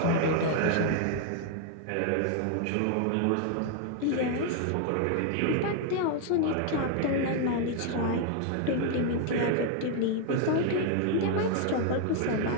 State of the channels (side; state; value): both; different; correlation 0.00